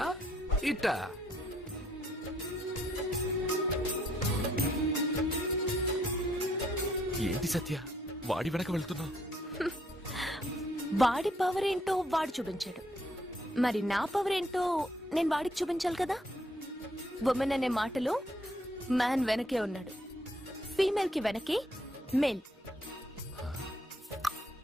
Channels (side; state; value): both; normal; correlation 0.69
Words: ఇట. ఏంటి సత్య వాడి వెనక వెళ్తున్నా? వాడి పవర్ ఏంటో వాడు చూపించాడు. మరి నా పవర్ ఏంటో నేను వాడికి చూపించాలి కదా. ఉమెన్ అనే మాటలో మ్యాన్ వెనకే ఉన్నాడు. ఫీమేల్ కి వెనకే మేల్.